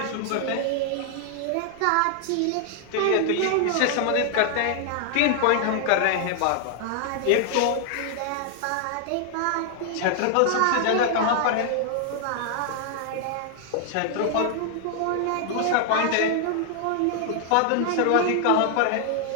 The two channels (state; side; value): different; both; correlation 0.00